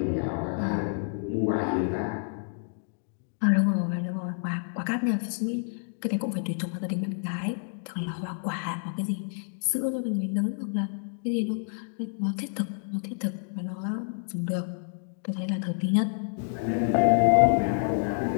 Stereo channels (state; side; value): silent; right; digital silence